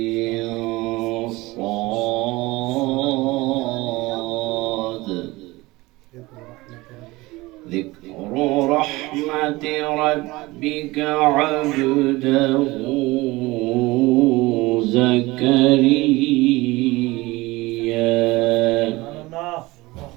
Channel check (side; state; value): left; quieter; 21.0 dB